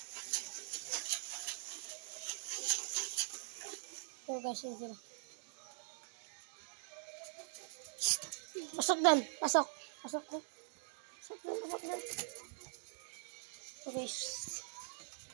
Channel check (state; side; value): silent; left; digital silence